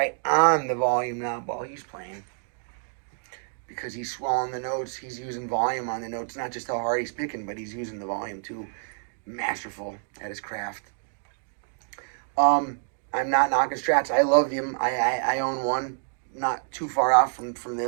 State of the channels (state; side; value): silent; left; digital silence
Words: on the volume knob while he's playing. Because he's swelling the notes, he's using volume on the notes, not just how hard he's picking, but he's using the volume too. Masterful at his craft. I'm not knocking Strats. I love them. I own one, not too far off from